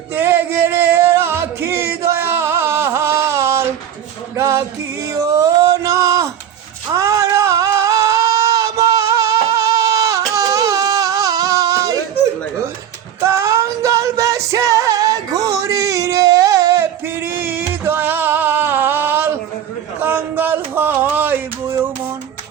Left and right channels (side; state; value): left; quieter; 9.8 dB